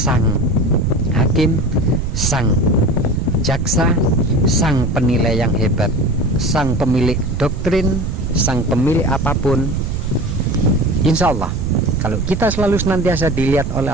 hakim, sang jaksa, sang penilai yang hebat, sang pemilik doktrin, sang pemilik apapun. Insya Allah kalau kita selalu senantiasa dilihat oleh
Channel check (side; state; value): right; noise; rumble, 3 dB below the sound